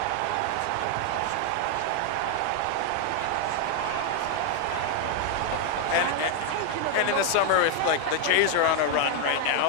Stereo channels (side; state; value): both; different; correlation 0.01